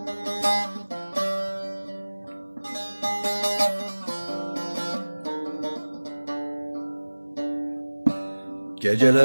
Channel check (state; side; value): inverted; both; correlation -1.00